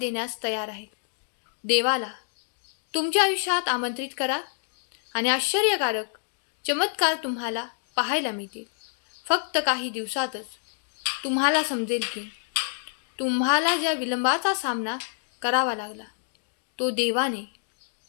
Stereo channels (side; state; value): right; silent; digital silence